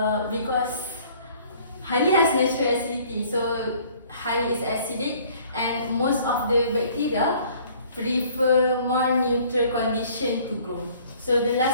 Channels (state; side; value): inverted; both; correlation -0.56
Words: honey has natural acidity. So honey is acidic, and most of the bacteria prefer more neutral condition to grow. So the